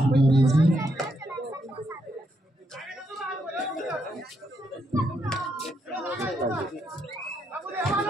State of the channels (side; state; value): both; normal; correlation 0.78